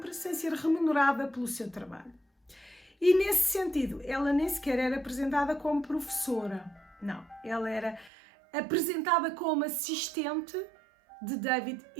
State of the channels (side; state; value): left; drops out; at 8.1 s